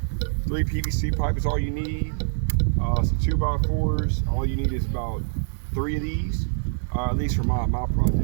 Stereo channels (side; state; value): left; silent; digital silence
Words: 3 PVC pipe is all you need. Some 2x4s. All you need is about 3 of these. At least for my